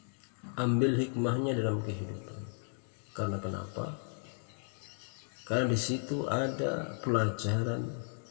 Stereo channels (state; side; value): silent; right; 55 dB below the other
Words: dalam kehidupan. Karena kenapa? Karena di situ ada pelajaran